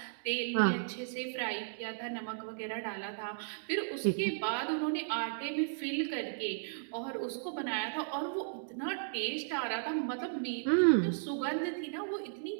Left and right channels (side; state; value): left; silent; digital silence